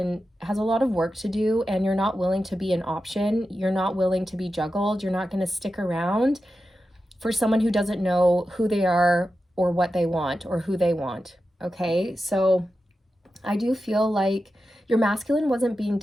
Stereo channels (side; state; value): both; normal; correlation 0.91